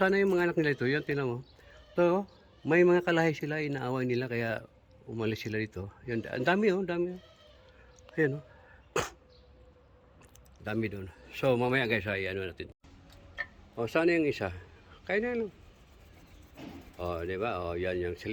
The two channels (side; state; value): both; identical; correlation 1.00